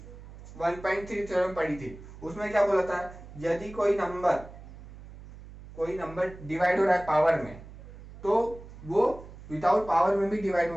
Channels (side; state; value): right; noise; hum, 16 dB below the sound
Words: 1.3 थ्योरम पढ़ी थी, उसमें क्या बोला था, यदि कोई नंबर डिवाइड हो रहा है पावर में, तो वो विदाउट पावर में भी डिवाइड